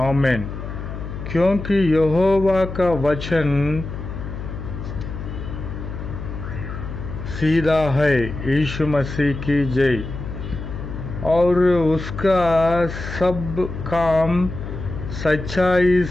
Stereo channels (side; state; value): left; noise; hum, 8 dB below the sound